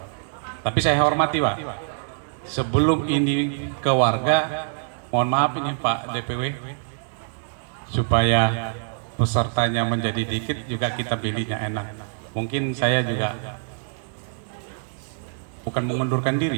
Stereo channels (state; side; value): silent; left; digital silence